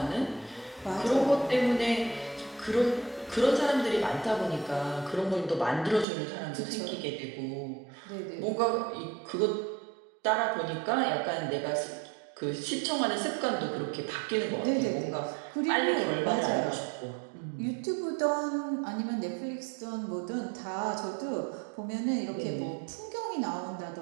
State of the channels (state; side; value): drops out; left; at 6.1 s